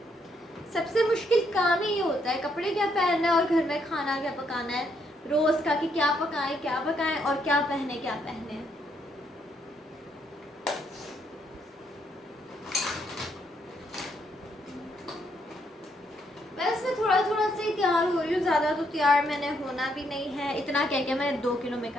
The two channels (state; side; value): normal; both; correlation 0.74